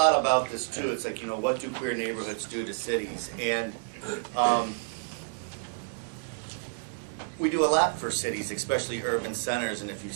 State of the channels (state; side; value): silent; left; 58 dB below the other